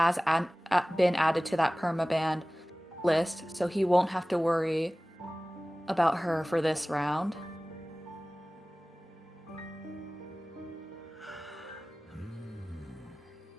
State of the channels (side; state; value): both; normal; correlation 0.98